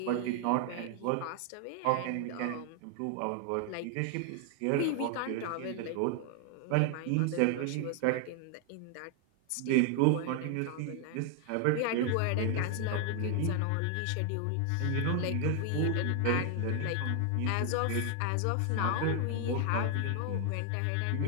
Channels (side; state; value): both; different; correlation 0.00